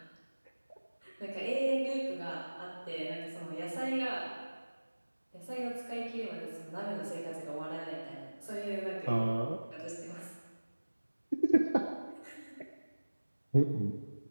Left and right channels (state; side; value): inverted; both; correlation -1.00